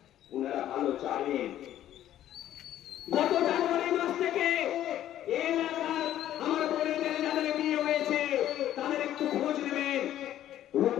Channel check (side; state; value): right; quieter; 12.2 dB